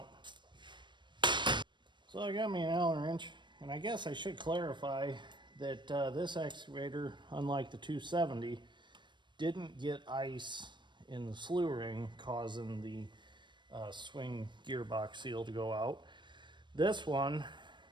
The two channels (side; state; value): left; late; 0.22 ms